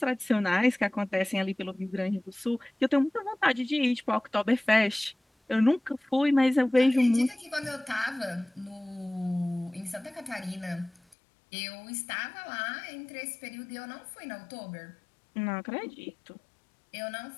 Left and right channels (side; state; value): right; drops out; at 11.2 s